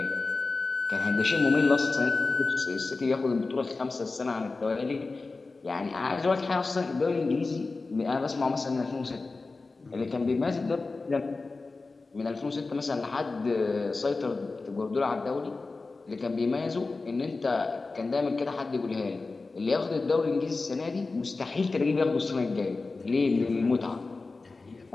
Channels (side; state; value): right; quieter; 3.7 dB